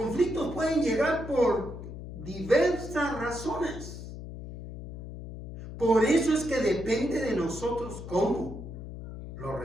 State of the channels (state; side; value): noise; left; hum, 10 dB below the sound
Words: pueden llegar por diversas razones. Por eso es que depende de nosotros cómo lo